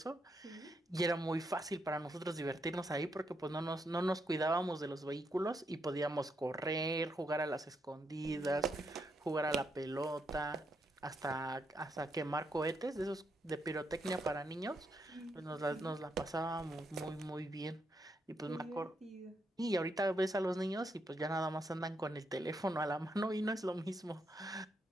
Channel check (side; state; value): both; normal; correlation 0.79